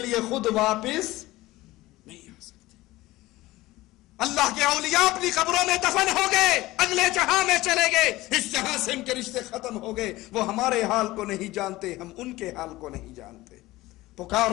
خود واپس نہیں آ سکتے. اللہ کے اولیاء اپنی قبروں میں دفن ہو گئے, اگلے جہاں میں چلے گئے, اس جہاں سے ان کے رشتے ختم ہو گئے. وہ ہمارے حال کو نہیں جانتے, ہم ان کے حال کو نہیں جانتے.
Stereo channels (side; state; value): right; quieter; 18.3 dB